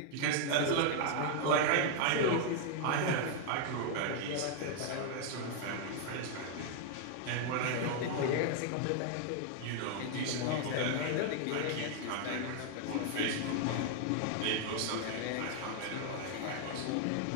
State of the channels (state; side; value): different; both; correlation 0.00